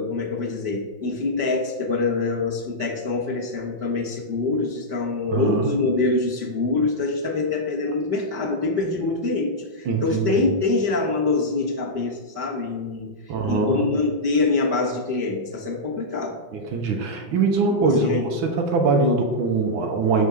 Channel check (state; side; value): late; left; 5.1 ms